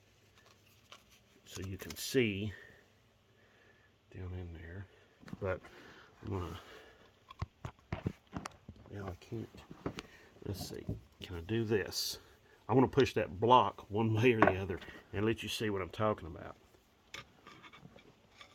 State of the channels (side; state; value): both; identical; correlation 1.00